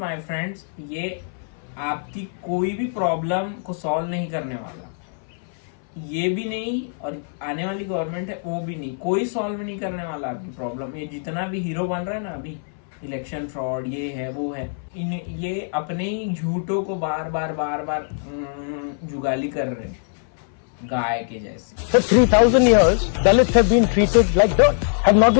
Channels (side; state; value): right; silent; 59 dB below the other